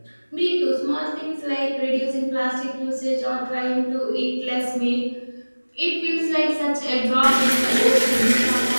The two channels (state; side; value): inverted; both; correlation -1.00